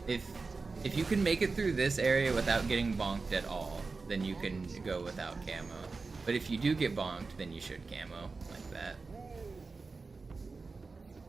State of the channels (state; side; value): quieter; left; 4.1 dB